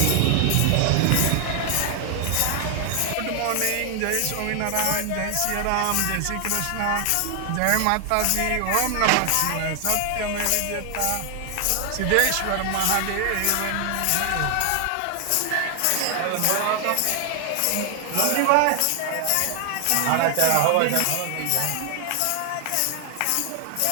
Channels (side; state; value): both; different; correlation 0.00